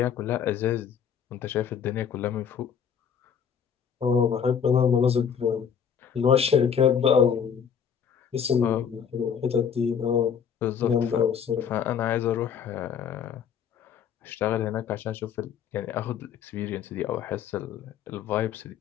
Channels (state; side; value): quieter; right; 7.6 dB